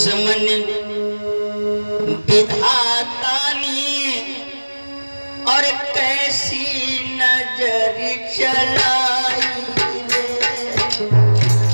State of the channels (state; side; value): inverted; both; correlation -1.00